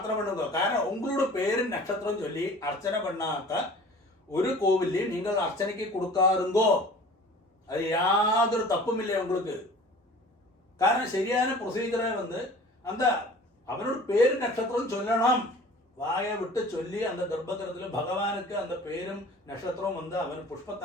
பண்ணுங்க. காரணம் உங்களோட பேரு நட்சத்திரம் சொல்லி அர்ச்சனை பண்ணாக்க ஒரு கோவிலையும் நீங்கள் அர்ச்சனைக்கு கொடுக்காருங்கோ. அது யாതൊരു தப்பும் இல்லை உங்களுக்கு. காரணம் சரியான ப்ரொசீஜரை அந்த அவனோட பேரு நட்சத்திரம் சொல்லணும். வாயை விட்டு சொல்லி அந்த கர்ப்பகிரகத்தில் பகவானுக்கு அந்த பேரும் நட்சத்திரம் அவன்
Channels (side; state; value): both; normal; correlation 0.44